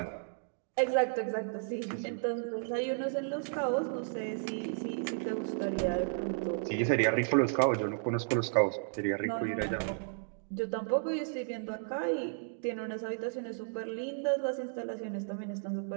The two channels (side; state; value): left; silent; digital silence